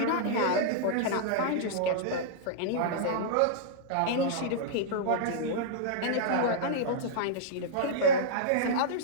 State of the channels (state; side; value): different; both; correlation -0.02